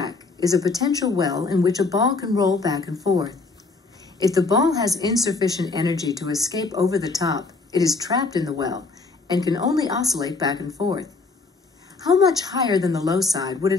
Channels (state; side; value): quieter; right; 3.9 dB